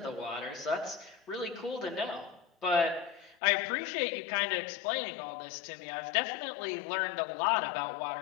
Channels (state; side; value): drops out; right; at 3.4 s